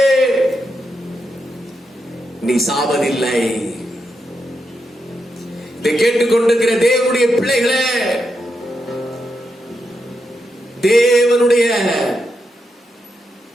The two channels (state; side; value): normal; both; correlation 0.84